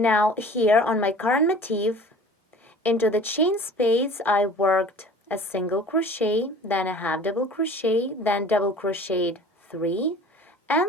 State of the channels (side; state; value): both; normal; correlation 0.44